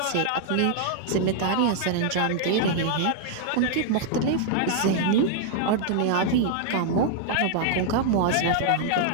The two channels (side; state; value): both; different; correlation 0.00